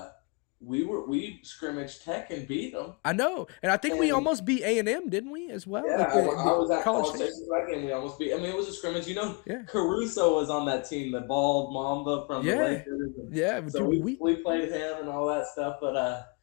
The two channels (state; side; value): quieter; right; 30.8 dB